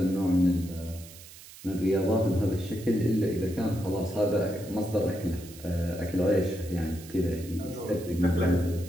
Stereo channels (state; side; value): noise; right; hiss, 18 dB below the sound